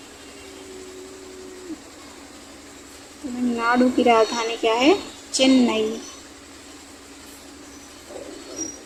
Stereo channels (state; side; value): identical; both; correlation 1.00